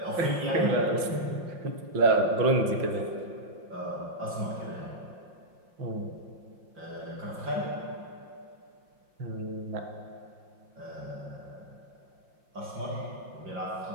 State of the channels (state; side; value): late; left; 5.7 ms